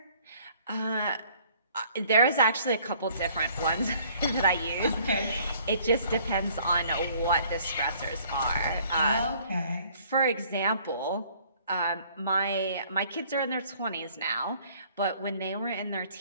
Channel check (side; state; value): both; inverted; correlation -0.58